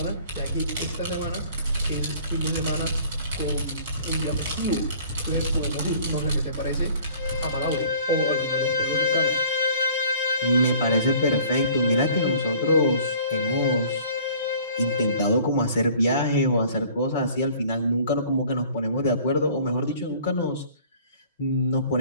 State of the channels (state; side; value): inverted; both; correlation -0.51